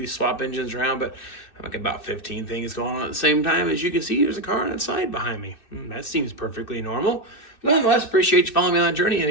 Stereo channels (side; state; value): right; late; 2.6 ms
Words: swap engines around. But I'm like about 15 things going on at the same time. As you can see, there's a car on the side behind me. That seems perfectly normal. Nonetheless, appreciate you following me on the journey.